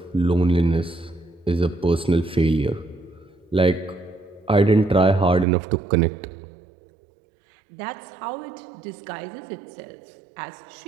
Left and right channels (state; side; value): drops out; left; at 5.5 s